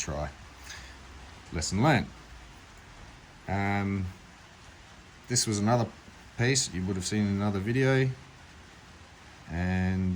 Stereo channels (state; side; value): identical; both; correlation 1.00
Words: Lesson learned. This was another piece you would have seen in another video,